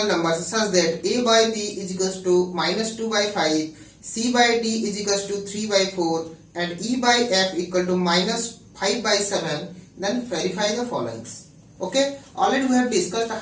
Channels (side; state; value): both; identical; correlation 1.00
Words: numbers such that a by b is equals to -2 by 5, c by d is equals to 3 by 4 and e by f equal to -5 by 7, then verify the followings. Okay, already we have discussed